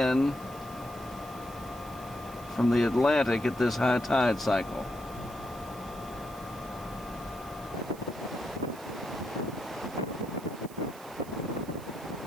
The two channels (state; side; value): noise; right; hiss, 20 dB below the sound